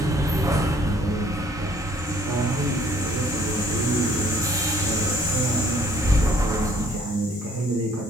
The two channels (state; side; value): normal; both; correlation 0.60